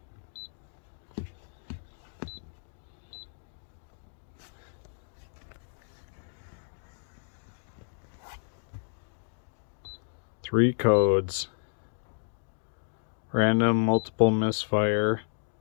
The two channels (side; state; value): right; silent; digital silence